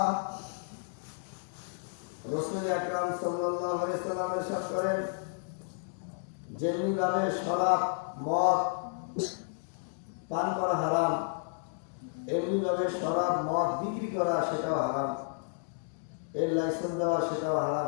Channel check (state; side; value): silent; right; digital silence